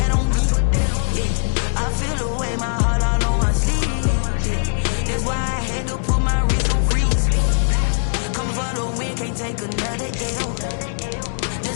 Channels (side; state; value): right; silent; digital silence